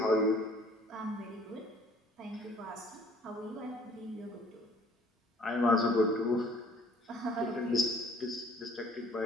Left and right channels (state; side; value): normal; both; correlation 0.56